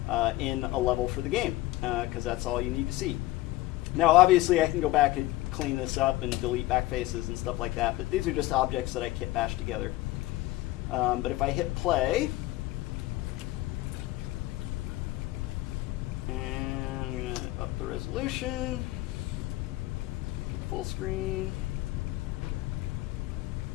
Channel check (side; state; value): right; quieter; 17.7 dB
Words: in a level for the game, because that's all you need to see. Now, obviously, I can go back and clean this up and delete backfaces and stuff like that, but these are just objects that I kit bashed together. But if I hit play, and I'm going to up the resolution, make it full screen,